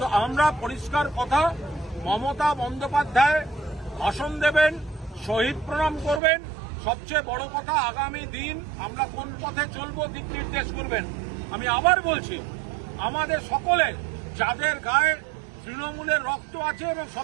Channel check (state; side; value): drops out; left; at 6.2 s